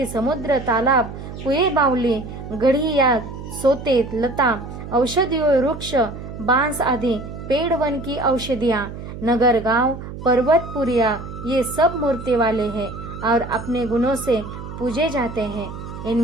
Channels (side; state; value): right; noise; hum, 10 dB below the sound